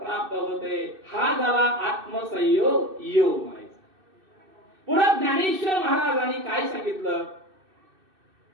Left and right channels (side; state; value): left; late; 2.6 ms